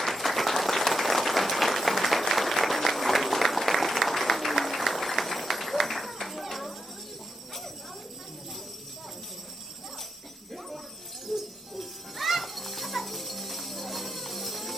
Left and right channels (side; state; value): both; normal; correlation 0.84